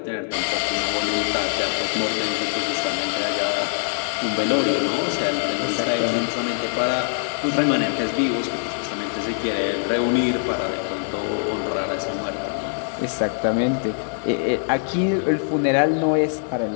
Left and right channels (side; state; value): right; silent; 63 dB below the other